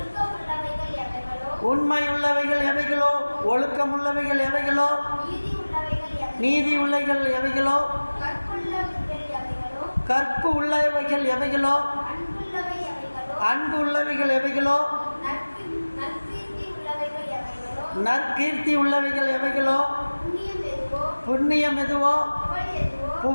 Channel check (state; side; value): inverted; both; correlation -1.00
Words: எவைகளோ, உண்மையுள்ளவைகள் எவைகளோ, ஒழுக்கமுள்ளவைகள் எவைகளோ, நீதி உள்ளவைகள் எவைகளோ, நீதி உள்ளவைகள் எவைகளோ, கற்பு உள்ளவைகள் எவைகளோ, அன்பு உள்ளவைகள் எவைகளோ, நற்கீர்த்தி உள்ளவைகள் எவைகளோ, நற்கீர்த்தி உள்ளவைகள் எவைகளோ, புண்ணியம் எதுவோ, புகழ் எதுவோ,